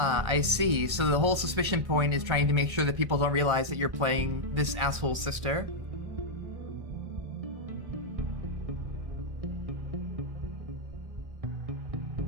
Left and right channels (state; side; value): late; left; 1.6 ms